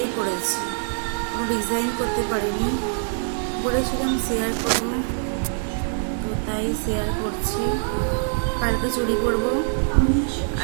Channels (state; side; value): silent; left; 63 dB below the other